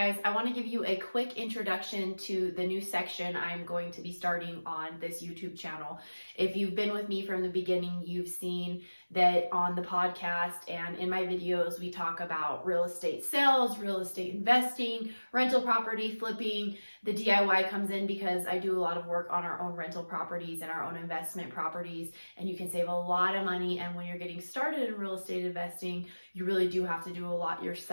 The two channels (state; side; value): inverted; both; correlation -1.00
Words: I want to give you a quick introduction to the new section I'm going to be starting on this YouTube channel. If you've been with me from the beginning, you've seen that on the podcast and in my videos, we talk about real estate sales, real estate investing, rental property flipping. The DIY comes in because I do a lot of work on our own rental properties and our own investment properties, and you can save a lot of money. And when you're getting started in real estate investing, you really do have to do a lot